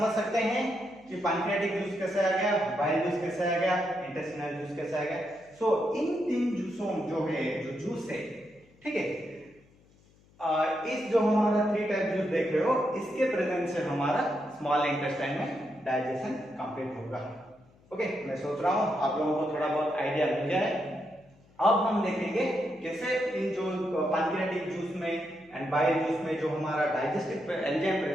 सकते हैं कि पैंक्रियाटिक जूस कैसे आ गया, बाइल जूस कैसे आ गया, इंटेस्टिनल जूस कैसे आ गया। सो इन तीन जूसों जो है, जो जूस है, ठीक है, इस जो हमारा 3 टाइप जूस देख रहे हो, इसके प्रेजेंस से हमारा स्मॉल इंटेस्टाइन में डाइजेशन कंप्लीट होगा। ओके, मैं सोच रहा हूं आप लोगों को थोड़ा बहुत आइडिया मिल जाए। अब हम देखेंगे कैसे इन जो पैंक्रियाटिक जूस में एंड बाइल जूस में जो हमारा डाइजेस्टिव एंजाइम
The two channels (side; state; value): left; noise; hum, 30 dB below the sound